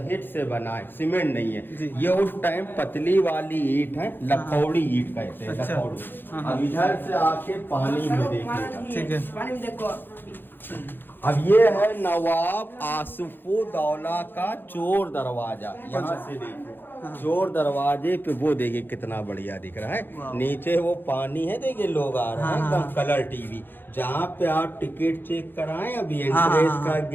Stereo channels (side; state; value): right; late; 0.098 ms